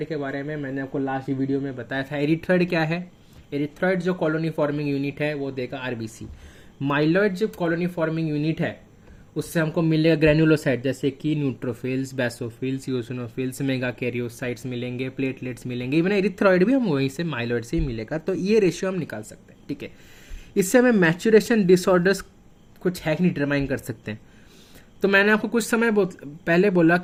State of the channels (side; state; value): both; identical; correlation 1.00